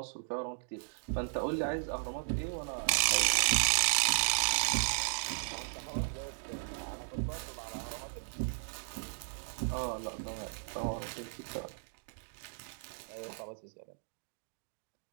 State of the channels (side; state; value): left; silent; digital silence